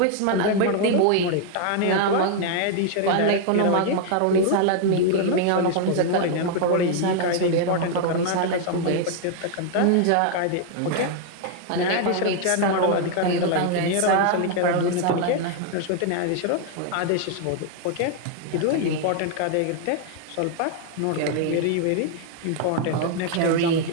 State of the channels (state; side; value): different; both; correlation 0.00